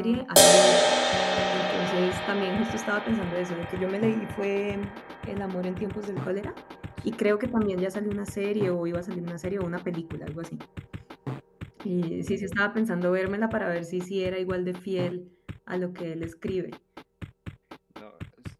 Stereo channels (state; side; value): identical; both; correlation 1.00